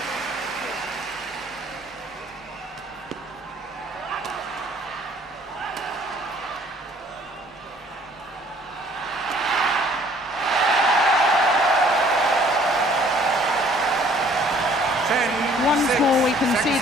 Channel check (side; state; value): both; normal; correlation 0.57